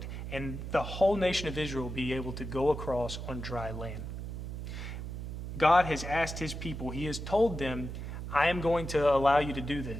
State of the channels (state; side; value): noise; right; hum, 7 dB below the sound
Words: and the whole nation of Israel would be able to go across on dry land. God has asked his people, he has told them, I am going to allow you to do